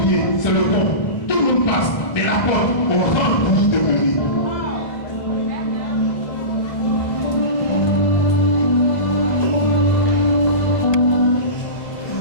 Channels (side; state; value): right; late; 2.0 ms